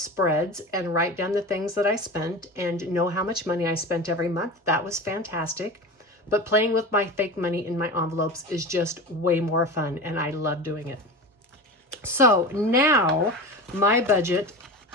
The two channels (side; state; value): both; normal; correlation 0.28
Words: and write down the things that I spent and know how much money I spent every month. That was fantastic. But playing with my fake money in my envelopes is just way more fun, and I love doing it. So now my budget